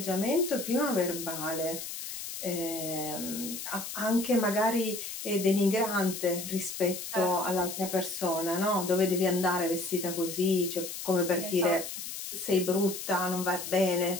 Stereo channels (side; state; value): left; noise; hiss, 8 dB below the sound